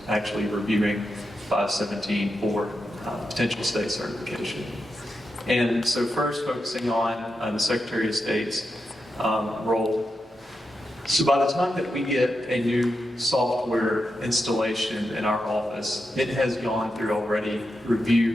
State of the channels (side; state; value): both; normal; correlation 0.87